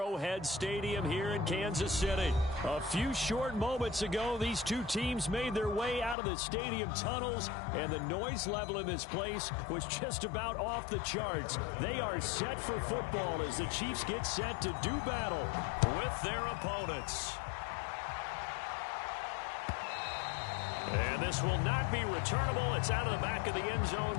Stadium here in Kansas City. A few short moments ago, these two teams made their way out of the stadium tunnels, and the noise level in this place was just about off the charts. They are set for football as the Chiefs get set to do battle with their opponents. And this will not be returnable. It's out of the back of the end zone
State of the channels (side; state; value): right; drops out; at 6.2 s